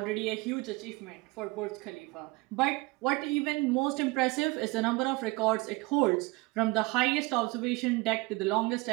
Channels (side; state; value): left; quieter; 23.7 dB